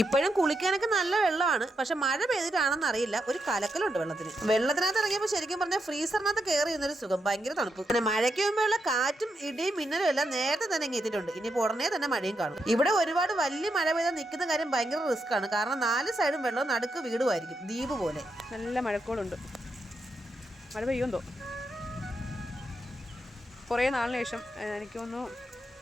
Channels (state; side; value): normal; both; correlation 0.83